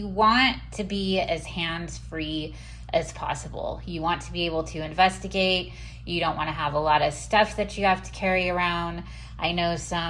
want to be as hands-free as possible. You want to be able to investigate. You don't want to have a lot of stuff that you have to carry around. I know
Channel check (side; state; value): both; identical; correlation 1.00